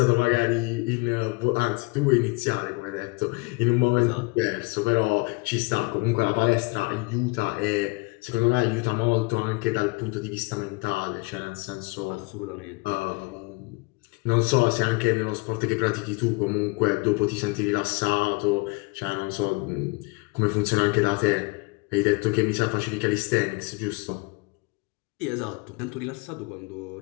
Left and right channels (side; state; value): right; quieter; 27.8 dB